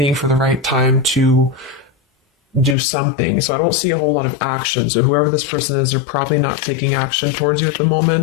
for the right time to do something. So I don't see a whole lot of action. So whoever this person is, they're probably not taking action towards you at the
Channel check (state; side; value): drops out; right; at 2.8 s